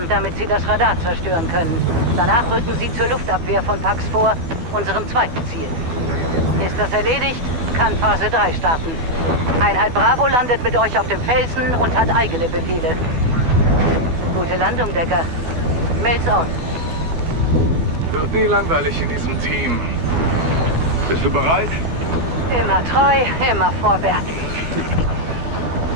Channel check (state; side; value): late; left; 12 ms